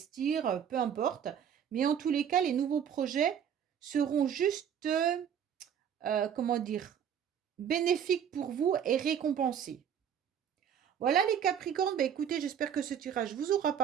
peu importe. Mais en tous les cas, les nouveaux projets seront juste, comment dire, bénéfiques pour vous et récompensés. Voilà les Capricornes, bah écoutez, j'espère que ce tirage vous aura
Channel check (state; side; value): quieter; left; 8.6 dB